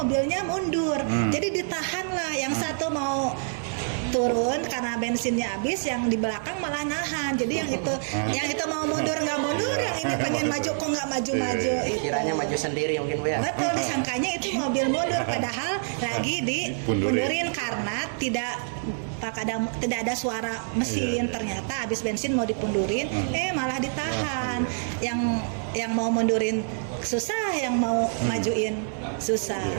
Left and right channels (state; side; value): silent; left; digital silence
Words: mundur. Jadi ditahanlah, yang satu mau turun karena bensinnya habis, yang di belakang malah nahan. Jadi yang itu mau mundur nggak mundur, yang ini pengen maju kok nggak maju-maju. Itu. Kiranya maju sendiri mungkin Bu ya. Betul, disangkanya itu mobil mundur padahal lagi dipundurin karena tidak ada suara mesin. Ternyata habis bensin mau dipundurin, malah ditahan. Yang mau mundurin susah, yang mau majuin susah.